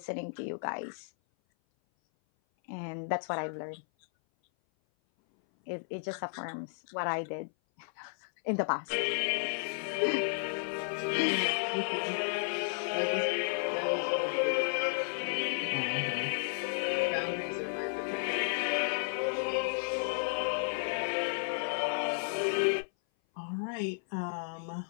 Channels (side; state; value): right; silent; 56 dB below the other